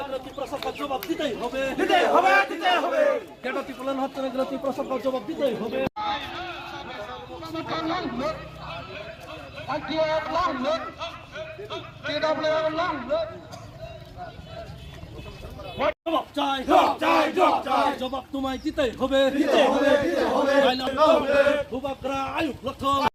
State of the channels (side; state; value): both; identical; correlation 1.00